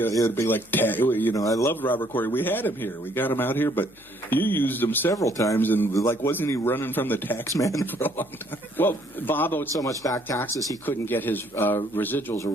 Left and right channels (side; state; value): left; noise; hum, 28 dB below the sound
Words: would be like, I loved Robert Corey. We had him here. We got him out here, but you used him several times, and like, wasn't he running from the tax man for a long time? Well, Bob owed so much back taxes he couldn't get his residuals or